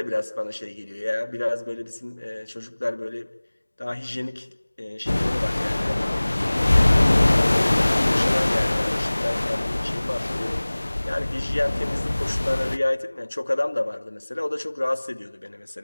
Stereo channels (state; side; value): inverted; both; correlation -1.00